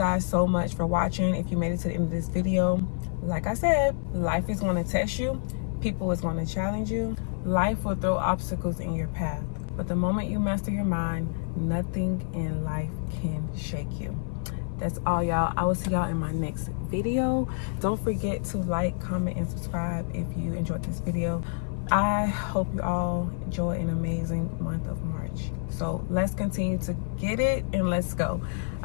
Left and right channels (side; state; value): right; silent; 56 dB below the other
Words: so much for watching. If you made it to the end of this video, like I said, life is going to test you. People is going to challenge you. Life will throw obstacles in your path. But the moment you master your mind, nothing in life can shake you. That's all, y'all. I will see y'all in my next video. Don't forget to like, comment, and subscribe if you enjoyed this video. I hope you all enjoy an amazing month of March. So let's continue to get it, and let's go.